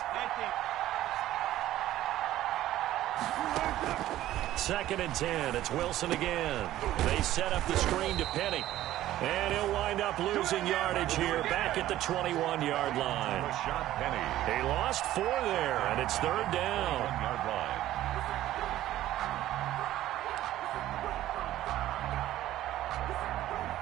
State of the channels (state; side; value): quieter; left; 14.0 dB